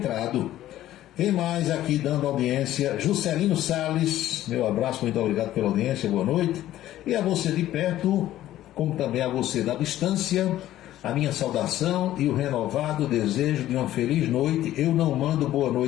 Quem mais aqui dando audiência? Juscelino Salles, meu abraço, muito obrigado pela audiência, boa noite. E a você de perto, como também a você da distância, a minha saudação e o renovado desejo de uma feliz noite. Eu não mando boa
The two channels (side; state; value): right; quieter; 13.7 dB